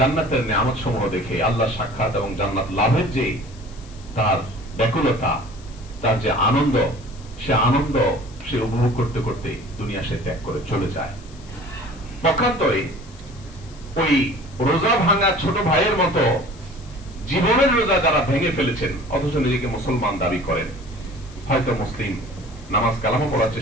নিয়ামত সমূহ দেখে, আল্লাহ সাক্ষাৎ এবং জান্নাত লাভের যে তার ব্যাকুলতা, তার যে আনন্দ, সে উপভোগ করতে করতে দুনিয়া সে ত্যাগ করে চলে যায়। পক্ষান্তরে ওই রোজা ভাঙা ছোট ভাইয়ের মতো জীবনের রোজা যারা ভেঙে ফেলেছেন, অথচ নিজেকে মুসলমান দাবি করেন, হয়তো মুসলিম, নামাজ কালামও পড়ার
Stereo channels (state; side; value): noise; left; hiss, 24 dB below the sound